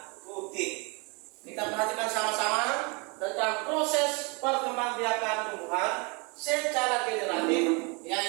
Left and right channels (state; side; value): quieter; left; 31.0 dB